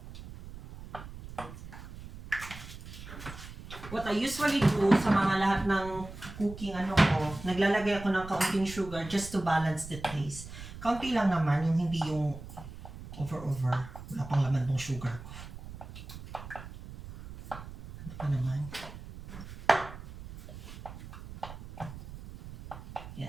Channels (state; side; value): noise; right; rumble, 13 dB below the sound